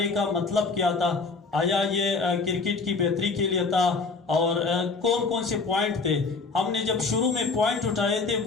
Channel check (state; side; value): quieter; right; 4.2 dB